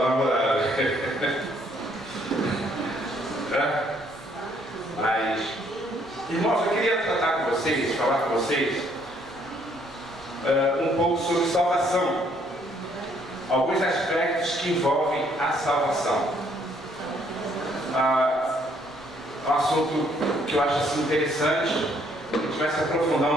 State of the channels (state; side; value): normal; both; correlation 0.66